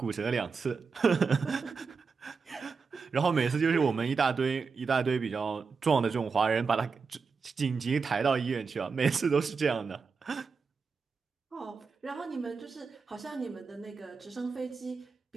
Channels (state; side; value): quieter; left; 5.1 dB